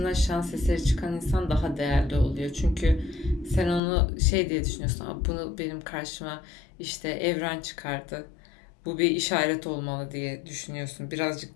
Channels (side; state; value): right; drops out; at 3.8 s